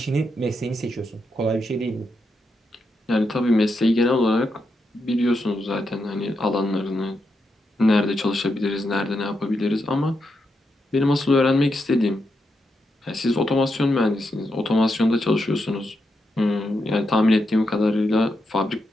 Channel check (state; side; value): normal; both; correlation 0.84